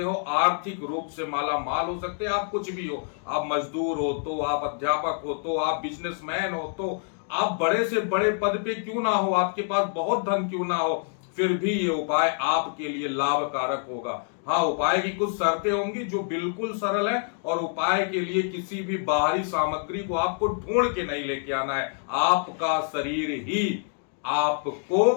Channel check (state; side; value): silent; right; 61 dB below the other